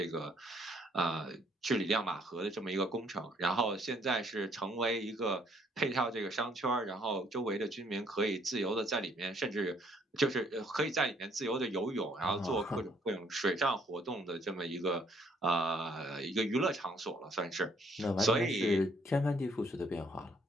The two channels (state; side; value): normal; both; correlation 0.65